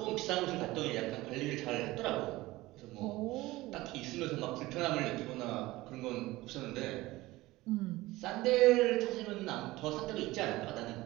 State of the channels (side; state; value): left; quieter; 18.9 dB